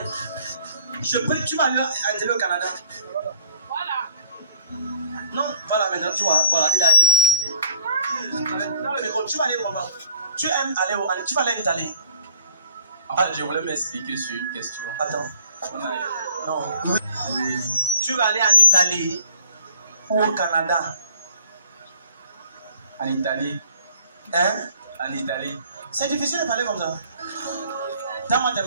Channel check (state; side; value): inverted; both; correlation -0.58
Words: Je prie que tu vas aller en Italie ou au Canada. Voilà. Non, voilà maintenant, tu vois, voilà, il a dit. Tu vas aller où, maman? Tu aimes aller où? Tu vas aller en Italie. En fait, je voulais m'expliquer sur une question. Attends. Non. Oui. Tu vas aller en Italie ou au Canada? En Italie. Hein? En Italie. C'est difficile de parler comme ça. Donne-moi tes